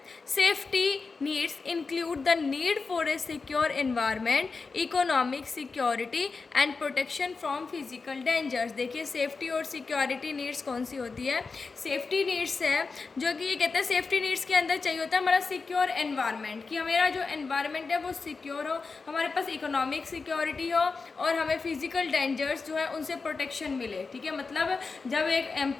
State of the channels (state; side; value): quieter; right; 4.4 dB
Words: Safety needs include the need for a secure environment, economic security and protection from physical dangers. देखिए सेफ्टी और सिक्योरिटी नीड्स कौन सी होती है। सेफ्टी नीड्स है जो कि ये कहते हैं सेफ्टी नीड्स के अंदर चाहिए होता है हमारा सिक्योर एनवायरनमेंट, कि हमारा जो एनवायरनमेंट है वो सिक्योर हो, हमारे पास इकोनॉमिक सिक्योरिटी हो और हमें फिजिकल डेंजर्स जो है उनसे प्रोटेक्शन मिले। ठीक है, मतलब जब एक